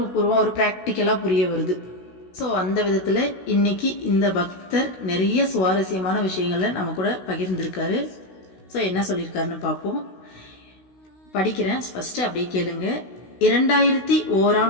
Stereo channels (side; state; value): right; late; 16 ms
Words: பூர்வம் ஒரு பிராக்டிக்கலா புரிய வருது. ஸோ அந்த விதத்துல இன்னைக்கு இந்த பக்தர் நிறைய சுவாரஸ்யமான விஷயங்களை நம்ம கூட பகிர்ந்திருக்காரு. ஸோ என்ன சொல்லியிருக்காருன்னு பார்ப்போம். படிக்கிறேன், ஃபர்ஸ்ட் அப்படியே கேளுங்க.